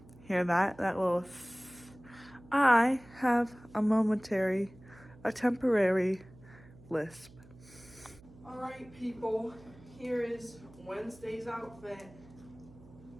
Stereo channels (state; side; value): noise; right; hum, 22 dB below the sound